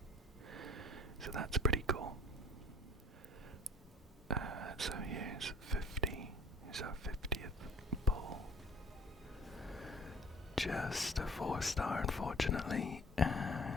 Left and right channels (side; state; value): both; normal; correlation 0.51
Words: So that's pretty cool. So here's 50. Here's our 50th poll. Just a 4-star, unfortunately,